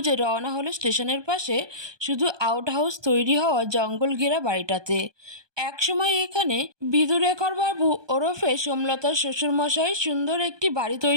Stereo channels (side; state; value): left; late; 1.2 ms